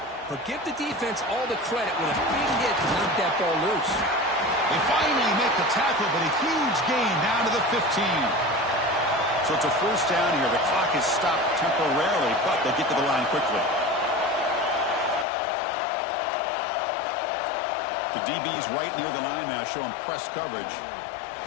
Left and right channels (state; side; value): drops out; right; at 15.2 s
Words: But give the defense all the credit with a big hit to knock that ball loose. They finally make the tackle, but a huge gain down to the 15. So it's a first down here. The clock is stopped temporarily, but they'll get to the line quickly. The DB's right near the line now, showing press coverage.